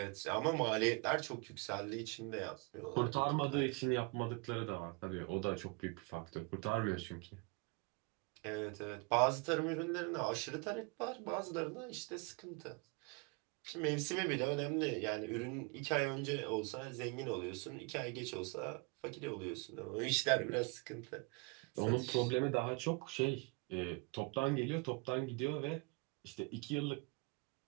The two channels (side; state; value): left; quieter; 29.8 dB